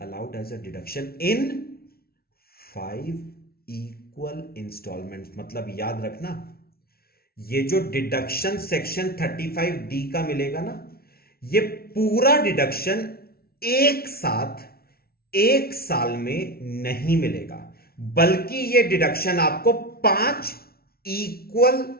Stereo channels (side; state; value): right; late; 0.44 ms